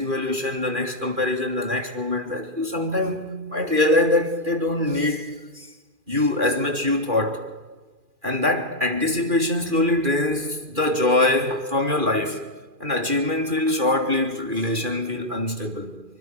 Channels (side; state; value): left; late; 2.4 ms